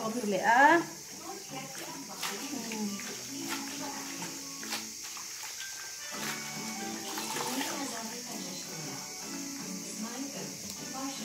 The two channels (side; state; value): both; identical; correlation 1.00